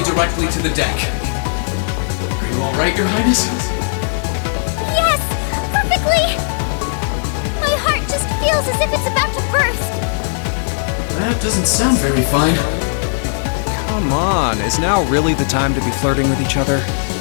directly to the deck. Are you all right, Your Highness? Yes! Perfectly! My heart just feels as if it's about to burst. That doesn't sound very fine. Come on, is now really the time to be flirting with each other?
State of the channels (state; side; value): silent; right; digital silence